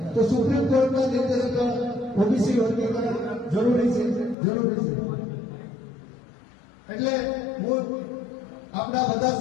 તો સુપ્રીમ કોર્ટના નિર્દેશ પર ઓબીસી વર્ગીકરણ જરૂરી છે. એટલે હું આપણા બધા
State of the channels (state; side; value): drops out; right; at 4.4 s